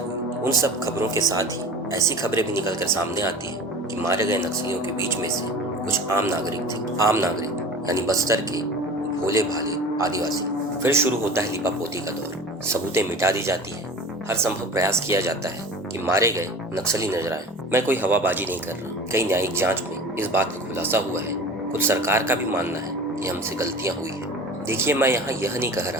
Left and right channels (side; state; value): both; normal; correlation 0.38